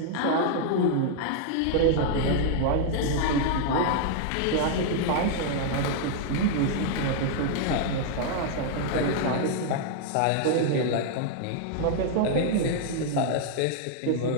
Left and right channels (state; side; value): different; both; correlation 0.00